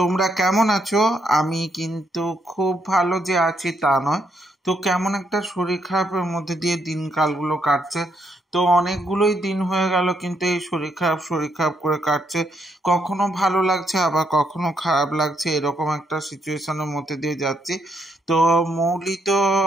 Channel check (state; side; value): normal; both; correlation 0.76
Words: কেমন আছো? আমি কিন্তু খুব ভালো যে আছি তা নয়, তো কেমন একটা শরীর খারাপের মধ্যে দিয়ে দিনকালগুলো কাটছে। তো অনেকগুলোই দিন হয়ে গেল, কিন্তু এই শরীর খারাপ করে কাটছে। কখনো ভালো লাগছে, আবার কখনো খারাপ লাগছে, এরকম একটা সিচুয়েশনের মধ্যে দিয়ে যাচ্ছি। তো মৌলি তো